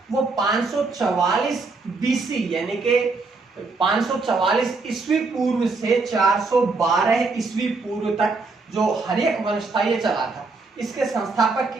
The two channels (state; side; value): quieter; left; 3.9 dB